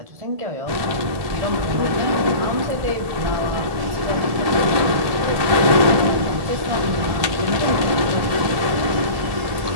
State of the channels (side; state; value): left; late; 1.7 ms